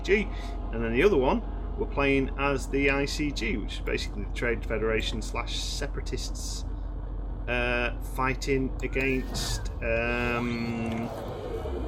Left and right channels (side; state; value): both; identical; correlation 1.00